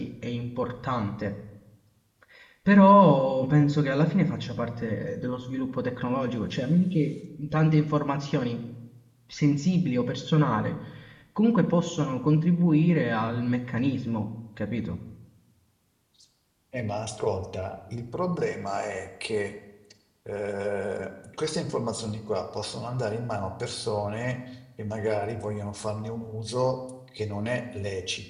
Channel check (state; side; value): identical; both; correlation 1.00